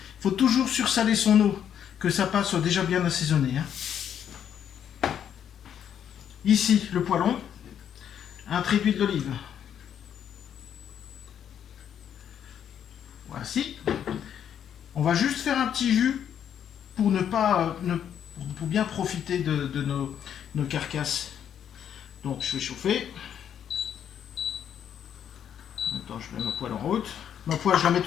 Il faut toujours sursaler son eau, que sa pâte soit déjà bien assaisonnée. Hein. Ici, le poêlon. Un trait d'huile d'olive. Voici. On va juste faire un petit jus pour ne pas, pour bien profiter de nos carcasses. Donc je vais chauffer. Attends, je mets ma poêle en route. Ma poêle, je la mets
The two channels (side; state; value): right; quieter; 9.1 dB